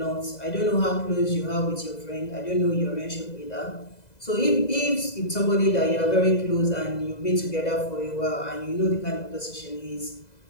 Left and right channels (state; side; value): late; right; 2.0 ms